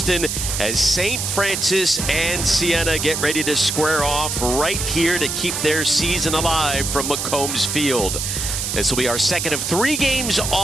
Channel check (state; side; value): noise; right; hiss, 2 dB below the sound